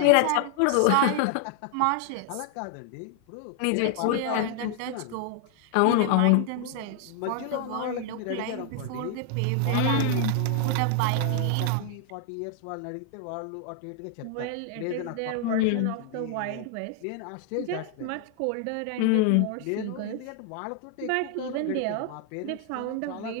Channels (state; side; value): different; both; correlation 0.00